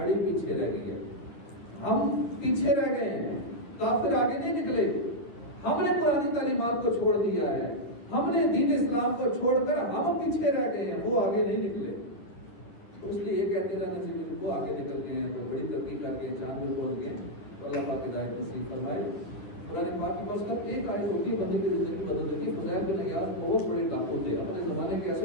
پیچھے رہ گئی ہے۔ ہم پیچھے رہ گئے ہیں، کافر آگے نہیں نکلے۔ ہم نے قرآن تعلیمات کو چھوڑ دیا ہے، ہم نے دین اسلام کو چھوڑ کر ہم پیچھے رہ گئے ہیں، وہ آگے نہیں نکلے۔ تو اس لیے یہ کہتے رہنا چاہیے وہ آگے نکل گئے ہیں، تو بڑی ترقی کر کے چاند میں پہنچ گئے۔ اللہ پاک ہدایت نصیب فرمائے۔ قرآن پاک کے پاس کب ایک آیت ہوتی ہے بندے کی زندگی بدل دیتی ہے۔ فضیل بن عیاض بہت بڑے ڈاکو تھے، اپنے زمانے کے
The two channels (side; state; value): right; late; 9.9 ms